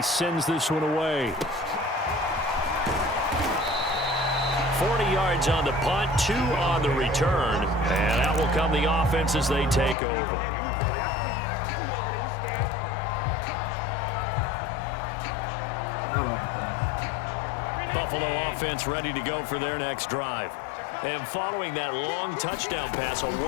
sends this one away. 40 yards on the punt, 2 on the return. And out will come the offense as they take over. Buffalo offense ready to go for their next drive. And following that long touchdown pass, a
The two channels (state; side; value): drops out; right; at 10.0 s